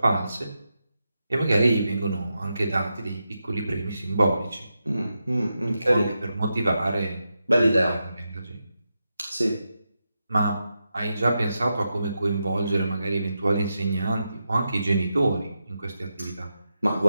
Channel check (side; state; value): both; inverted; correlation -0.88